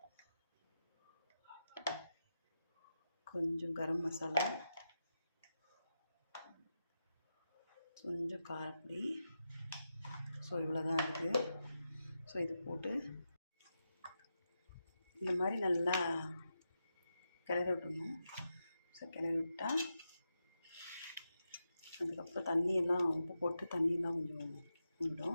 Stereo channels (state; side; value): inverted; both; correlation -0.88